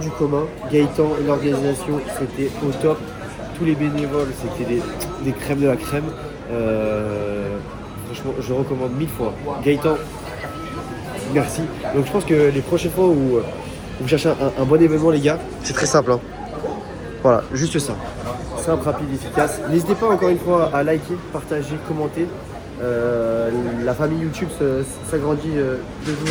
commun. Gaëtan et l'organisation, c'était au top. Tous les bénévoles, c'était des crèmes de la crème. Franchement, je recommande 1000 fois. Gaëtan, merci. Donc je pense que les prochaines fois où vous cherchez un bon événement, les gars, c'est très simple. Hein. Voilà, juste ça. Simple, rapide, efficace. N'hésitez pas encore une fois à liker, partager, commenter. La famille YouTube s'agrandit de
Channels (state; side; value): identical; both; correlation 1.00